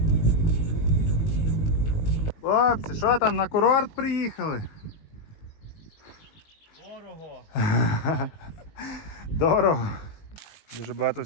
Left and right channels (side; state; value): right; late; 19 ms